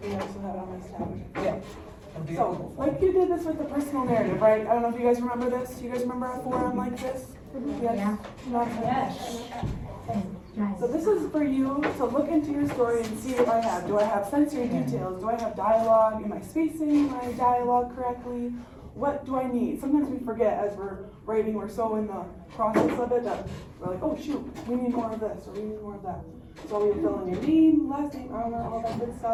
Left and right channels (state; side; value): identical; both; correlation 1.00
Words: we also have it on this tab. Yeah. So, like you did this with the personal narrative, right? I don't know if you guys remember this. You guys remember a forum like this? Yes? Yes. So this is for you to look into your story and see what I have. Do I have sensory details? Do I have dialogue? Am I spacing my dialogue correctly? What do I need? Sometimes we forget as we're writing, we're so in the process of it that we're like, oh shoot, we need more of this or we need more of that. So you fill in your name, last name, I don't know, all that good